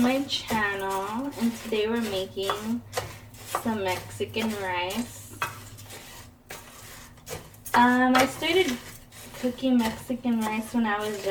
channel, and today we're making some Mexican rice. I started cooking Mexican rice when I was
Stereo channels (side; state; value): both; identical; correlation 1.00